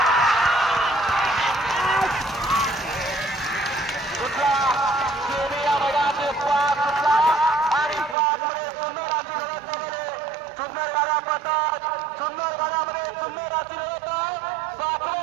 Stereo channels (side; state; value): left; drops out; at 8.2 s